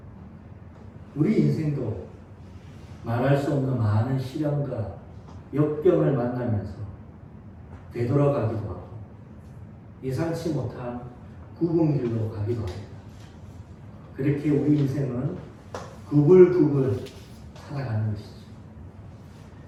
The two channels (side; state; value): both; identical; correlation 1.00